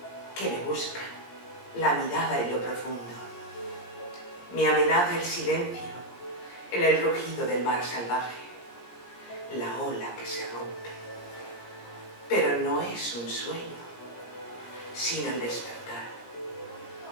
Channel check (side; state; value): right; late; 17 ms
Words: que me buscan, la mirada en lo profundo. Me amenaza el silencio en el rugido del mar salvaje, la ola que se rompe. Pero no es un sueño, sino el despertar,